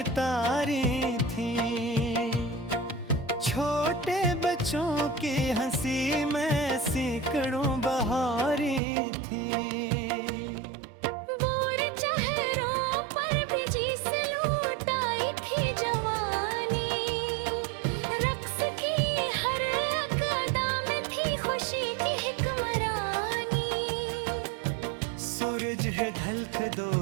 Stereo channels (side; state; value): left; drops out; at 8.8 s